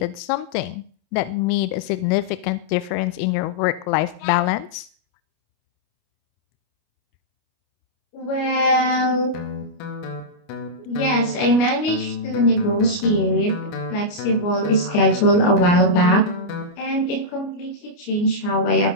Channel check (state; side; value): late; right; 29 ms